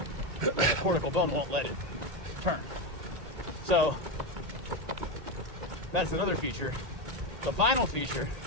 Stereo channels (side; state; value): left; late; 2.1 ms